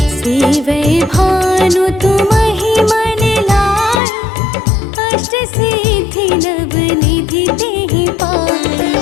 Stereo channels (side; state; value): right; drops out; at 4.0 s